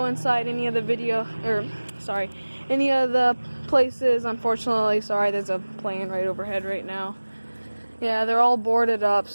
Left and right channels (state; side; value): inverted; both; correlation -1.00